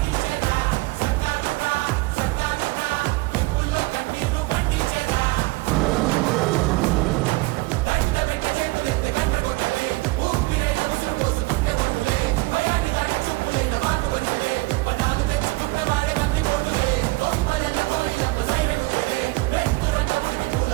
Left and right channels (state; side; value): quieter; left; 23.1 dB